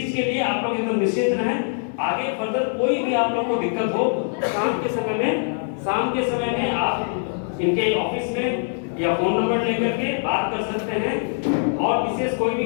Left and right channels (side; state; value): right; silent; digital silence